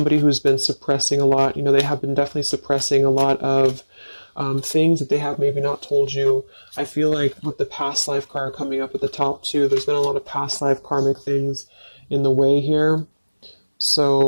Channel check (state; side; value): inverted; both; correlation -1.00